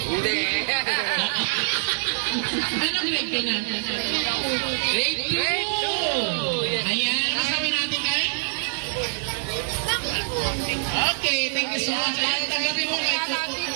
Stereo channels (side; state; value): left; silent; digital silence